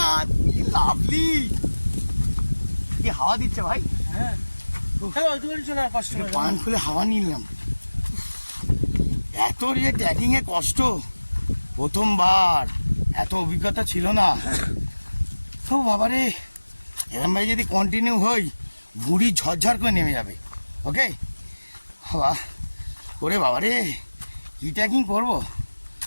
লাভলি, কি হাওয়া দিচ্ছে ভাই। হ্যাঁ পান খুলে হাওয়া নিলাম। এত যে ট্রেকিং এ কষ্ট, প্রথমবার, এত অভিজ্ঞতা ছিল না। তো বাবারে, এরম ভাই যদি কন্টিনিউ হই, বুড়ি ঝরঝর করে নেমে যাবে। ওকে বাবা, ওরে বাবারে, কি ট্রেকিং করবো।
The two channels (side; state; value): both; inverted; correlation -1.00